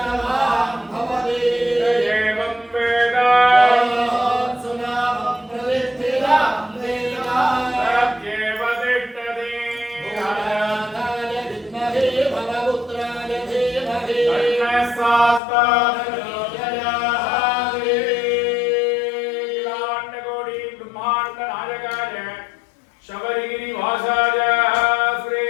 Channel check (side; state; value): right; drops out; at 15.4 s